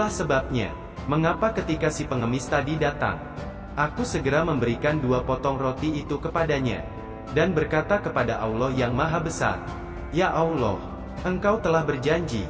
sebabnya, mengapa ketika si pengemis tadi datang, aku segera memberikan 2 potong roti itu kepadanya, dan berkata kepada Allah yang Maha Besar, 'Ya Allah, Engkau telah berjanji,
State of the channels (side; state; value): both; identical; correlation 1.00